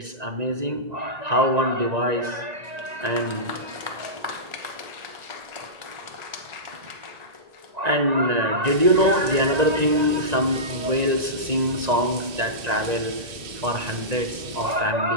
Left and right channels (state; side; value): late; left; 1.9 ms